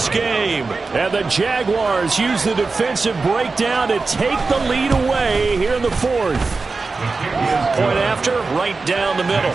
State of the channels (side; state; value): left; quieter; 4.0 dB